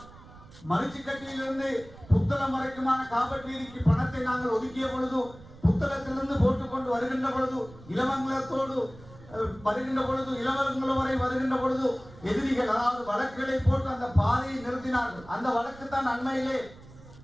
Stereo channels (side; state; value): right; noise; rumble, 20 dB below the sound